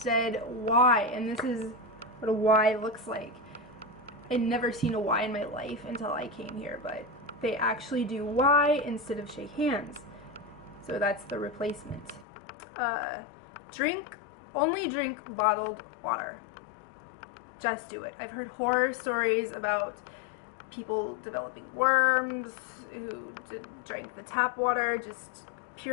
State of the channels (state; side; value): drops out; right; at 12.2 s